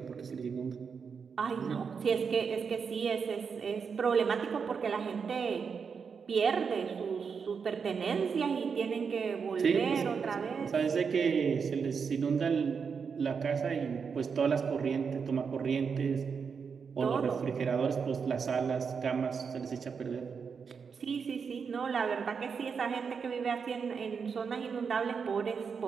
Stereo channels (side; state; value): left; quieter; 6.0 dB